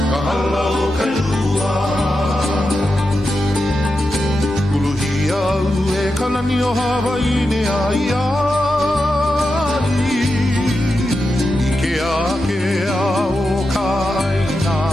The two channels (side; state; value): both; normal; correlation 0.89